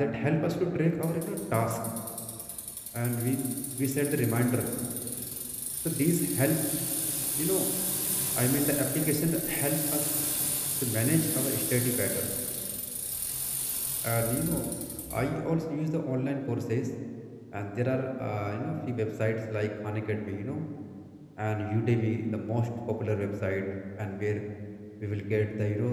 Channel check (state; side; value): identical; both; correlation 1.00